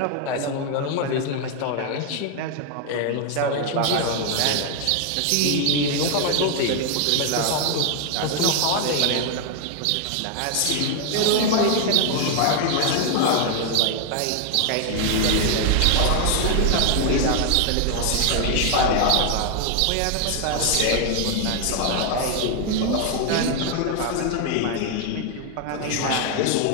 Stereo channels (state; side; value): different; both; correlation 0.00